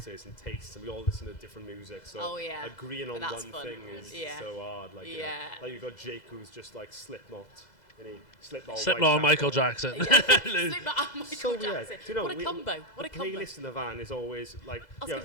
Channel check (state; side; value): late; right; 2.0 ms